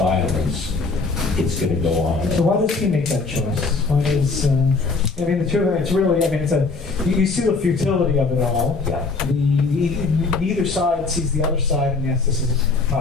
it's going to go on. So why does he make that choice? Why does, I mean, the two of them, it's really, I mean, you see the futility of it all. Yeah. Neither side sees the other side, and yes, this is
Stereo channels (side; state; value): right; quieter; 4.0 dB